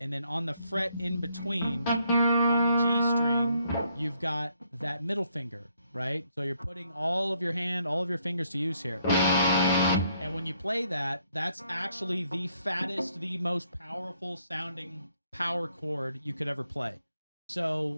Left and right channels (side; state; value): both; inverted; correlation -0.71